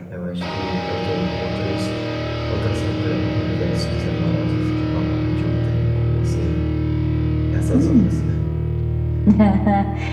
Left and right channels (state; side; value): identical; both; correlation 1.00